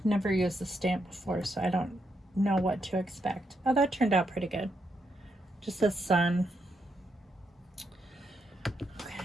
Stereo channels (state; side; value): normal; both; correlation 0.80